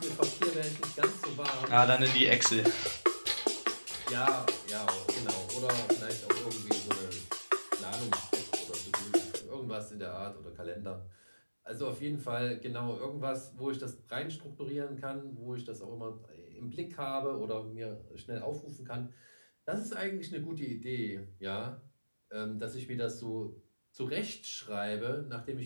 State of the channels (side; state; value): both; inverted; correlation -1.00